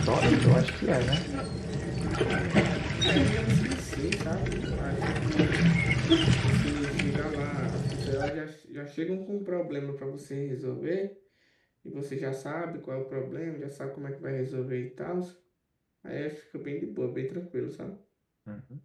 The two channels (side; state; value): both; identical; correlation 1.00